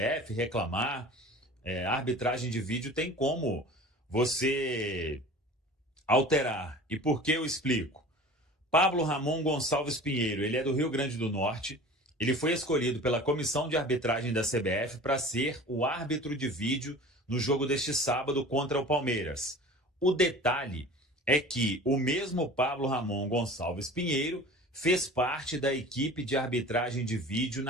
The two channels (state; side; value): normal; both; correlation 0.40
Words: reclamar. A arbitragem de vídeo tem como você alterar. E por que eu explico? Pablo Ramon Gonçalves Pinheiro, ele é do Rio Grande do Norte. Ele foi escolhido pela comissão de arbitragem da CBF para ser o árbitro de vídeo no jogo deste sábado contra o Palmeiras. O detalhe é que o mesmo Pablo Ramon Gonçalves Pinheiro fez parte da equipe de arbitragem de vídeo